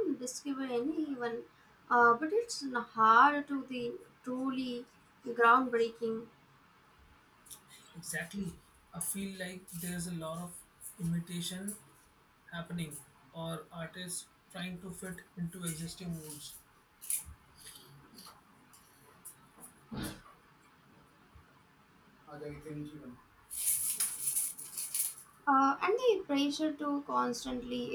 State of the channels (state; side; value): identical; both; correlation 1.00